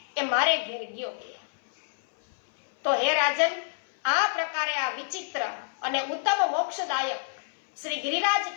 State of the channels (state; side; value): silent; right; 60 dB below the other